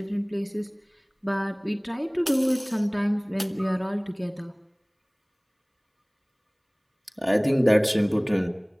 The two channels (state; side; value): identical; both; correlation 1.00